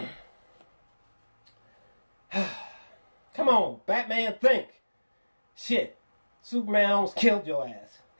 Come on, Batman, think. Shit. Superman almost killed your ass.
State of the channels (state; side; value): inverted; both; correlation -1.00